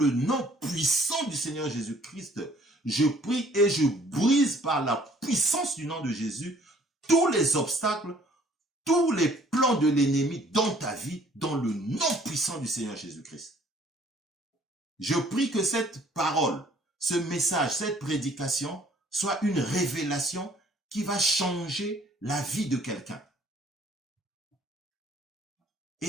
nom puissant du Seigneur Jésus-Christ, je prie et je brise par la puissance du nom de Jésus tous les obstacles, tous les plans de l'ennemi dans ta vie, dans le nom puissant du Seigneur Jésus-Christ. Je prie que cette parole, ce message, cette prédication soit une révélation qui va changer la vie de quelqu'un.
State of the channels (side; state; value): both; normal; correlation 0.58